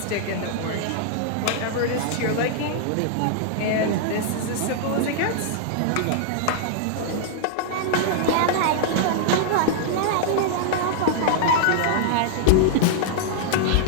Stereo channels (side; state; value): both; different; correlation -0.01